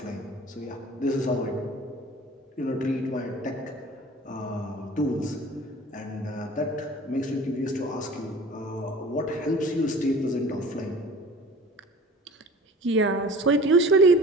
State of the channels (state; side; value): normal; both; correlation 0.43